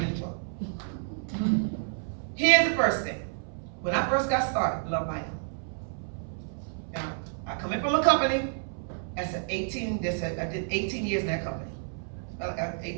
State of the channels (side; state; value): left; silent; 58 dB below the other